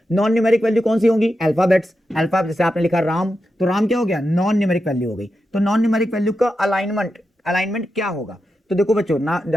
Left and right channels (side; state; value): both; normal; correlation 0.88